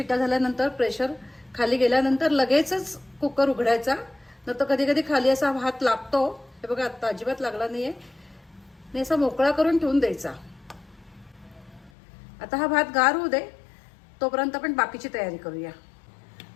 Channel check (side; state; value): right; drops out; at 11.9 s